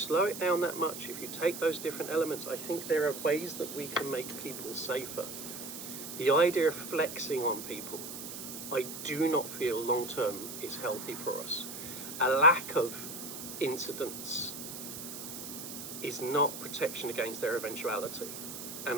it down that much, if you take those different elements, I think there are ways that we can make people safer. The idea of flexing on people, I do not feel long term is healthy for us. A lack of incidents is not protection against their eventuality.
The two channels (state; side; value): noise; right; hiss, 9 dB below the sound